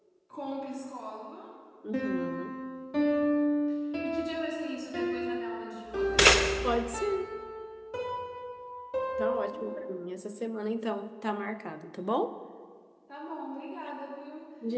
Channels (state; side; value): identical; both; correlation 1.00